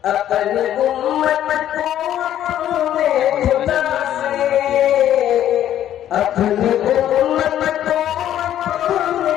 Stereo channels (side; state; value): right; quieter; 11.4 dB